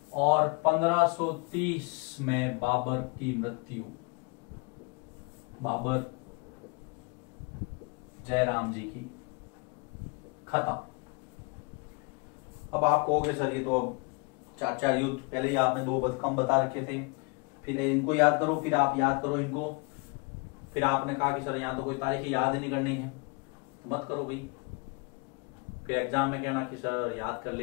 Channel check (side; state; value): right; quieter; 30.5 dB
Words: और 1530 में बाबर की मृत्यु, बाबर जयराम जी की, खत्म। अब आप कहोगे सर ये तो अब 4 युद्ध, पहले ही आपने 2 कम बता रखे थे, फिर इनको याद करो, फिर आप याद करो इनको, फिर आपने कहा कि सर यहाँ तो कोई तारीखें याद ही नहीं करनी है, तो मत करो भाई, फिर एग्जाम में कहना कि सर याद कर